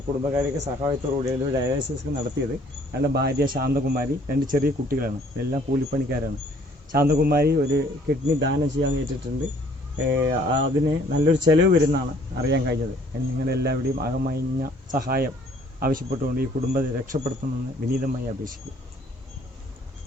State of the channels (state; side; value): normal; both; correlation 0.59